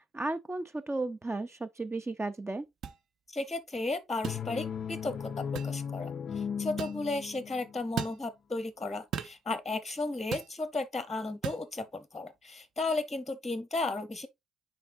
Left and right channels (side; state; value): both; normal; correlation 0.78